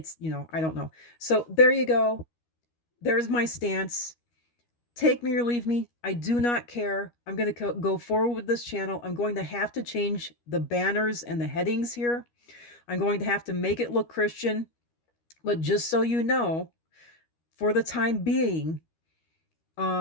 don't know. So there you go. There's my stance. Take me or leave me. I do not care. I'm going to go forward with this channel. I'm going to have to change the banners and the headings here. I'm going to have to make it look Christian. But just so you know, for the time being,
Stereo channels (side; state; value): right; late; 13 ms